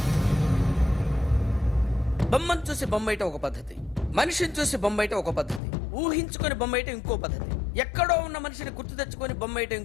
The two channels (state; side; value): drops out; right; at 5.6 s